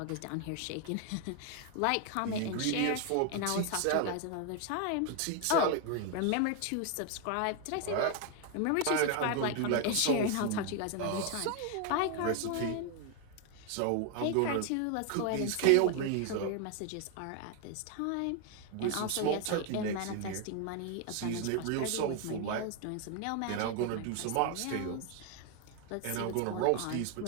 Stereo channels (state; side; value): different; both; correlation 0.01